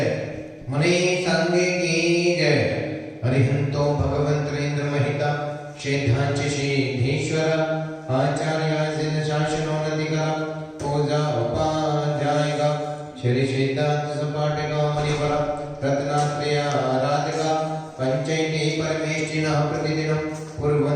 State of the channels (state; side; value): identical; both; correlation 1.00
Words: मुनि संघ की जय। हरिहंतो भगवंतरेंद्र महिता सिद्धांच सिद्धेश्वर आचार्य शासनो नदिका पूजा उपाध्यायिका श्री सिद्धांत सपाटिका मुनिवर रत्नात्रय आराधिका पंचैती परमेष्ठिनः प्रतिदिनं